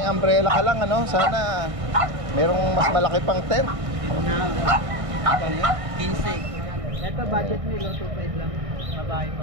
umbrella ka lang, ano? Sana merong mas malaki pang tent. 15. Ito budget nilo 2.5 lang. Babae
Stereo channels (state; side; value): late; left; 1.6 ms